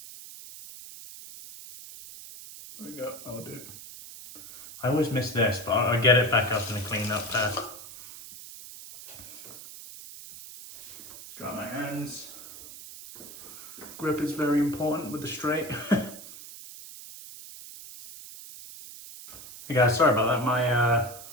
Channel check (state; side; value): noise; right; hiss, 15 dB below the sound